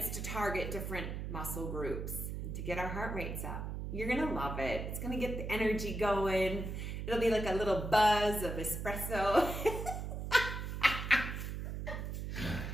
to target different muscle groups and to get our heart rates up. You're gonna love it. It's gonna get the energy going. It'll be like a little buzz of espresso.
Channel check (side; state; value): right; noise; hum, 5 dB below the sound